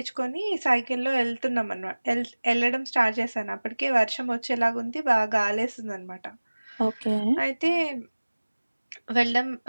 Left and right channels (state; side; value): inverted; both; correlation -1.00